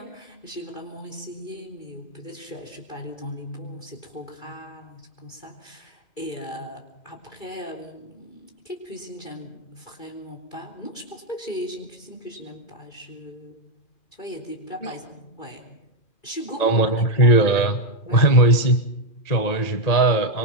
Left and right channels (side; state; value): right; late; 2.3 ms